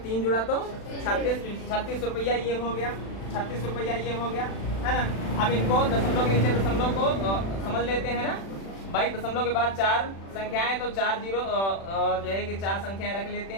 3 जुड़ा तो 36 रुपया ये हो गया, 36 रुपया ये हो गया, है ना। अब इनको दशमलव के नीचे दशमलव को समझ लेते हैं ना भाई। दशमलव के बाद 4 संख्याएं तो 4 0 जो है कि 4 संख्याएं रख लेते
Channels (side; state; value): right; late; 36 ms